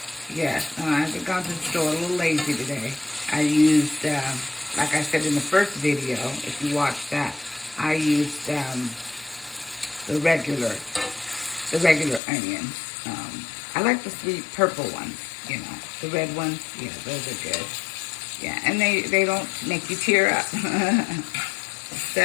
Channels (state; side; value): drops out; right; at 12.2 s